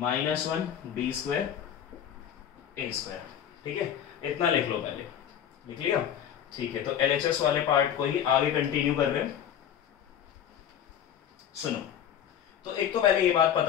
minus one B square A square. ठीक है, इतना लिख लो, पहले लिख लिया, ठीक है। तो एलएचएस वाले पार्ट को ही आगे कंटिन्यू कर रहे हैं। सुनो, तो एक तो पहले ये बात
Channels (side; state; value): right; quieter; 9.5 dB